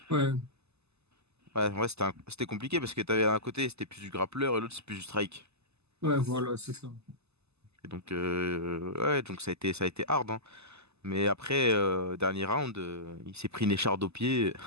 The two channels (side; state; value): left; late; 0.80 ms